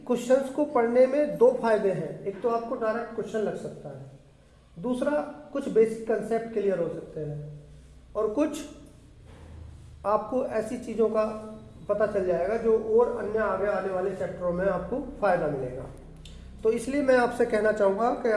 क्वेश्चंस को पढ़ने में 2 फायदे हैं। एक तो आपको डायरेक्ट क्वेश्चन लग सकता है, दूसरा कुछ बेसिक कंसेप्ट क्लियर हो सकते हैं, और कुछ आपको ऐसी चीज़ों का पता चल जाएगा जो और अन्य आगे आने वाले चैप्टरों में आपको फायदा मिलेगा। तो इसलिए मैं आपसे कहना चाहूँगा कि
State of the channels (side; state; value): both; identical; correlation 1.00